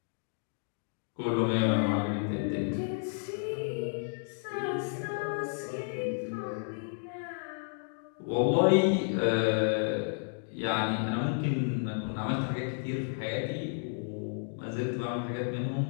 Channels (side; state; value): right; silent; digital silence